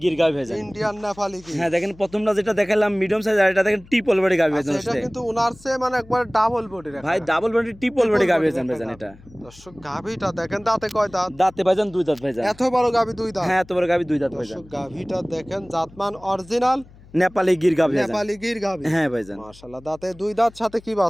গির গাভি ভাইজান। ইন্ডিয়ান নেপালি কি? হ্যাঁ দেখেন প্রথমটা যেটা দেখালাম মিডিয়াম সাইজ, আর এটা দেখেন ট্রিপল বডি গাভি আচ্ছা, ভাইজান। এটা কিন্তু উনার চেয়ে মানে একবার ডাবল বডির ভাই ডাবল বডি ট্রিপল বডি গাভি ভাইজান ভাইজান এটা। দর্শক গাভীটা দেখেন, দাঁতে কয় দাঁত? দাঁতে ভাইজান 2 দাঁত ভাইজান। এত বড় গাভী 2 দাঁত? হ্যাঁ এত বড় গাভি 2 দাঁত ভাইজান। দর্শক গাভীটা দেখেন, জাতমান অরিজিনাল নেপালি গির গাভি ভাইজান। নেপালি গির গাভী। হ্যাঁ ভাইজান। মাশাআল্লাহ, দাঁতে 2 দাঁত, সাথে কি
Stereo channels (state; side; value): noise; left; hum, 23 dB below the sound